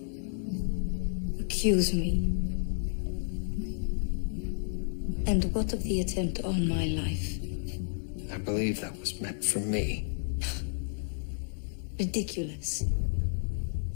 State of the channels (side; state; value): right; silent; digital silence